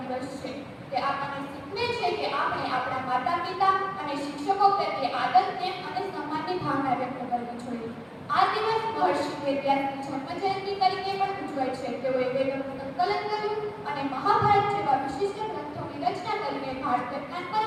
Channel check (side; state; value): both; identical; correlation 1.00